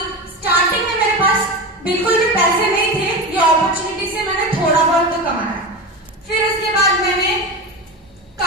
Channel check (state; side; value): normal; both; correlation 0.23